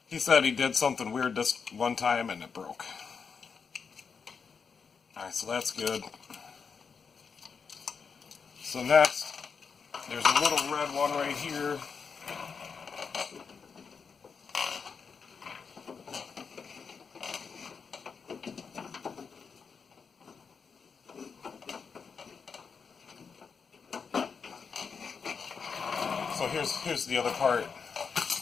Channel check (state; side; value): quieter; right; 5.8 dB